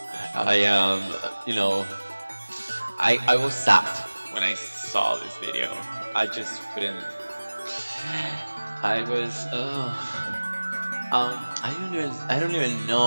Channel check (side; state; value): both; inverted; correlation -1.00